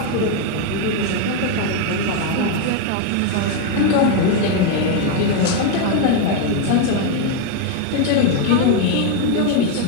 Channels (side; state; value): both; different; correlation 0.01